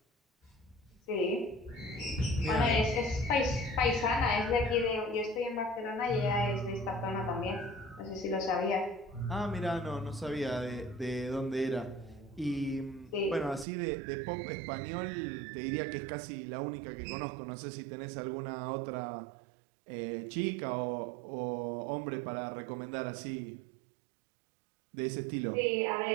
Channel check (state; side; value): drops out; left; at 13.7 s